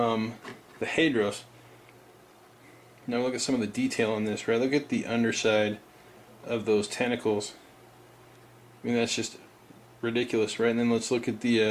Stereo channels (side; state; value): both; identical; correlation 1.00